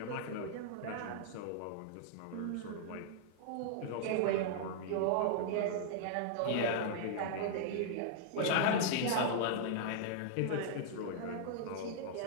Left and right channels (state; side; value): different; both; correlation -0.01